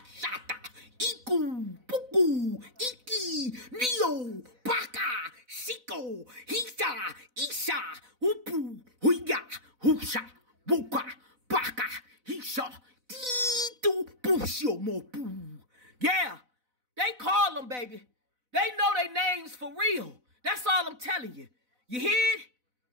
shata, Iku, puku, Iki, Neo, Baka, Shiko, Hisha, Isha, Upu, Huiga, Husha, Buka, Baka, Hisha, Titu, Pushio, Mopu. Yeah, they call them, baby. They know their names for real. That's all I'm telling you. You hear it?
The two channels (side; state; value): left; late; 4.0 ms